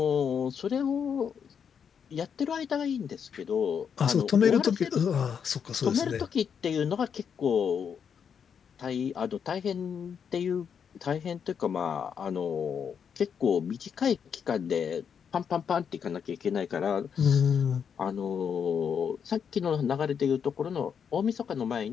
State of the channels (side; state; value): right; quieter; 7.3 dB